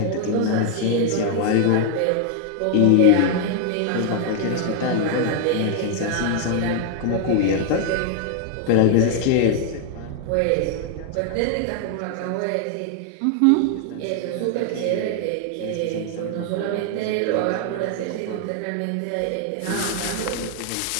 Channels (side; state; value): both; different; correlation 0.00